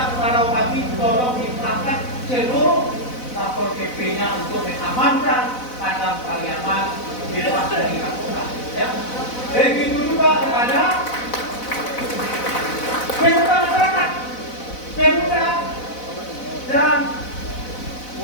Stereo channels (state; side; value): late; right; 4.0 ms